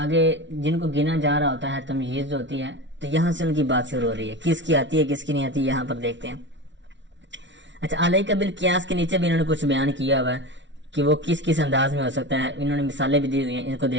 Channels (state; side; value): late; left; 0.54 ms